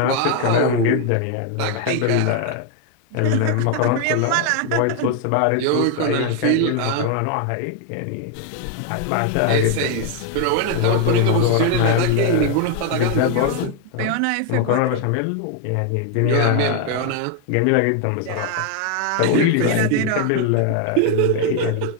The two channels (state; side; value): different; both; correlation 0.01